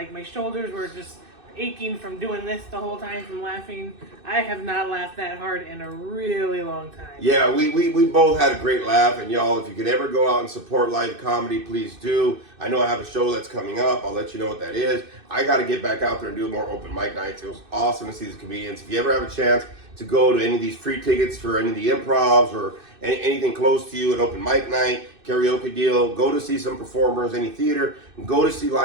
my shoulders were just aching from doing this the whole time, from laughing. I have not laughed that hard in a really long time. Yeah, we both had a great laugh, and y'all, if you could ever go out and support live comedy, please do. I know I have a show that's coming up. I'll let you know what that is. I got to get back out there and do more open mic nights. It was awesome to see these comedians. If you ever have a chance to go to any of these free tickets for any of the improvs or anything close to you, an open mic night, karaoke deal, go to see some performers, any theater, go to see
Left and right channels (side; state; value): left; late; 2.6 ms